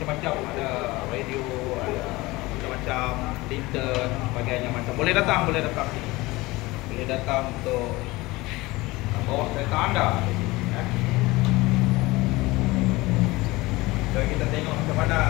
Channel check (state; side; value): quieter; right; 21.1 dB